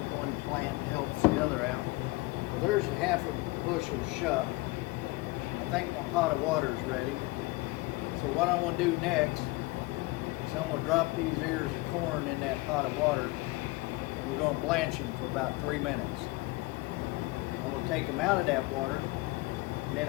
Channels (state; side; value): quieter; right; 22.3 dB